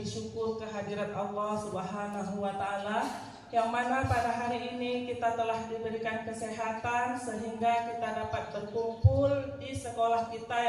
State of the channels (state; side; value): identical; both; correlation 1.00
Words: syukur kehadirat Allah Subhanahu wa taala, yang mana pada hari ini kita telah diberikan kesehatan sehingga kita dapat berkumpul di sekolah kita